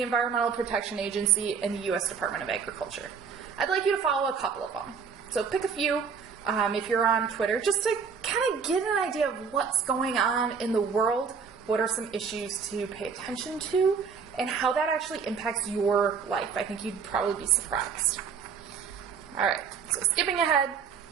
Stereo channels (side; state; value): left; quieter; 6.1 dB